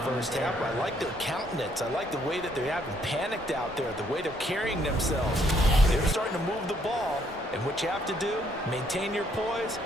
half. I like their countenance. I like the way that they haven't panicked out there, the way they're carrying themselves. They're starting to move the ball, and what you have to do, maintain your poise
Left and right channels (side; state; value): both; normal; correlation 0.69